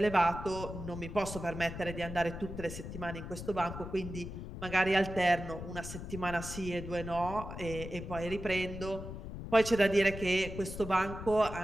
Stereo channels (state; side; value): noise; left; rumble, 9 dB below the sound